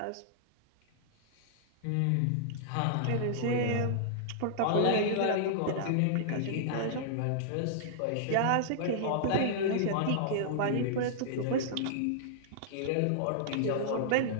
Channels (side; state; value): both; different; correlation -0.02